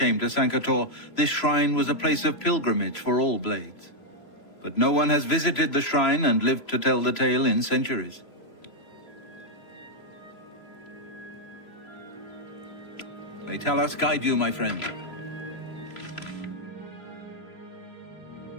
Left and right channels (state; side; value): late; right; 3.0 ms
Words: to Sancre Tor, this shrine was a place of pilgrimage for all Blades. But no one has visited the shrine and lived to tell the tale in centuries. May Talos guide you, my friend.